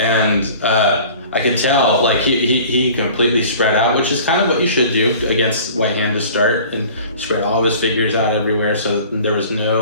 I could tell, he completely spread out, which is kind of what you should do against White Hand to start, and spread all of his figures out everywhere so that there was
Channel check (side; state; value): both; inverted; correlation -0.45